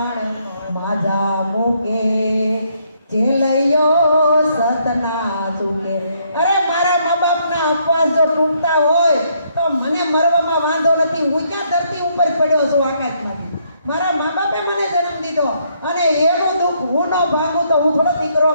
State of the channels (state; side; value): inverted; both; correlation -0.71